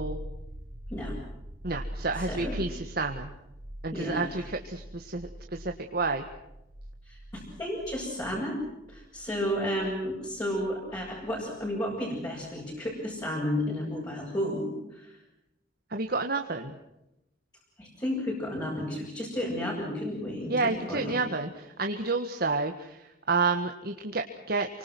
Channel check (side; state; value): both; normal; correlation 0.20